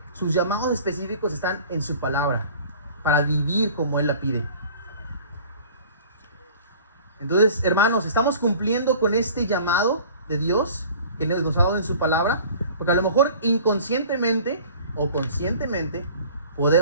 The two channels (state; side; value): inverted; both; correlation -0.46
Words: sus llamados específicos están en su palabra, para vivir como Él la pide. Entonces, hermanos, estamos cumpliendo con este llamado de Dios que nos ha dado en su palabra, porque a lo mejor inconscientemente o conscientemente